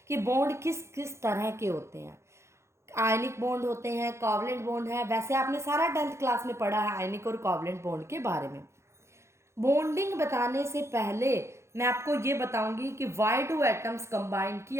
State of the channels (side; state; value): left; late; 0.13 ms